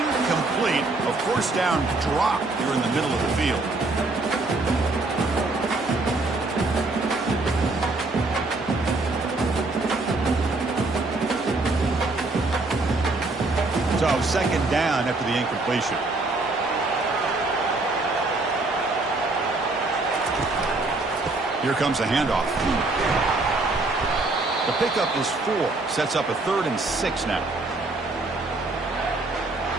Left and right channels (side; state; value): left; quieter; 3.2 dB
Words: A 1st down drop here in the middle of the field. So 2nd down after the incompletion. Here comes the handoff. The pickup is 4. Sets up a 3rd and 6 now.